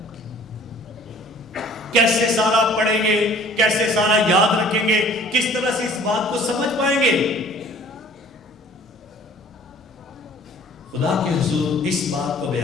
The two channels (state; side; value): normal; both; correlation 0.52